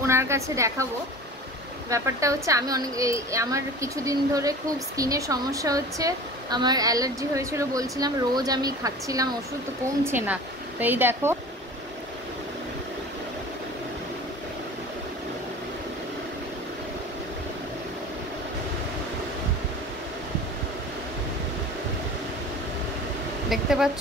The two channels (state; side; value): normal; both; correlation 0.39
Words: ওনার কাছে দেখাবো। ব্যাপারটা হচ্ছে আমি আমার কিছুদিন ধরে খুব স্কিনের সমস্যা হচ্ছে। আমার অ্যালার্জি হয়েছিল বলছিলাম, রোজ আমি খাচ্ছিলাম ওষুধ, তো কমছে না। তো এই দেখো, দেখতে